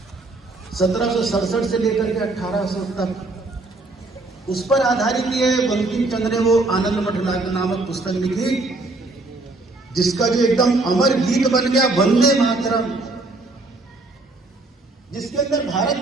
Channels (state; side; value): quieter; left; 3.1 dB